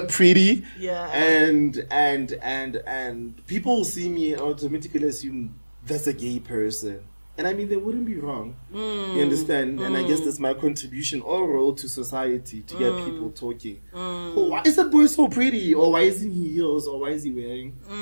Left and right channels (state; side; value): inverted; both; correlation -1.00